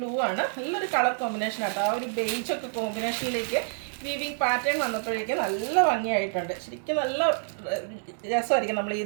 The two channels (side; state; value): left; silent; digital silence